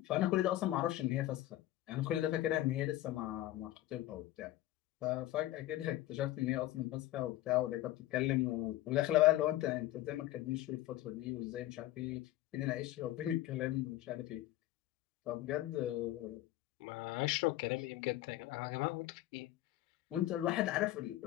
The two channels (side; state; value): right; quieter; 15.2 dB